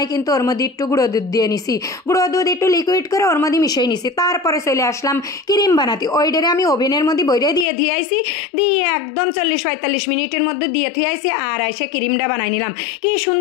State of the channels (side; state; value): right; drops out; at 7.7 s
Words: কিন্তু ওর মধ্যে একটু গুঁড়ো দুধ দিয়ে নিছি, গুঁড়ো দুধ একটু লিকুইড করে ওর মধ্যে মিশিয়ে নিছি। তারপরে চলে আসলাম ক্রিম বানাতে। ওইটারে আমি ওভেনের মধ্যে বইরে দিয়ে আইছি, দিয়ে একদম 40-45 মিনিটের মধ্যে দিয়ে আইছি। আর এসে ক্রিমটা বানাই নিলাম। কি